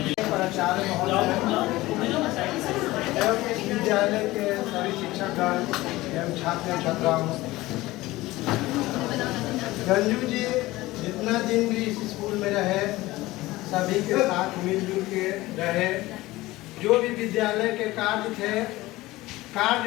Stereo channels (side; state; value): right; quieter; 18.7 dB